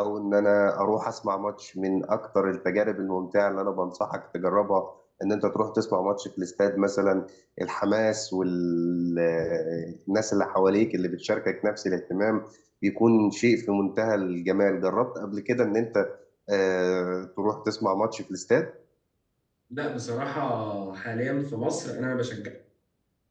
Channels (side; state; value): both; identical; correlation 1.00